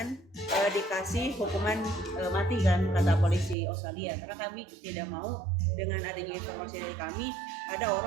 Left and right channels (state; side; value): drops out; left; at 3.6 s